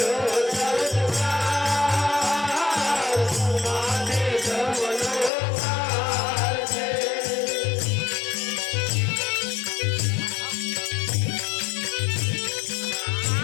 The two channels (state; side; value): drops out; right; at 5.3 s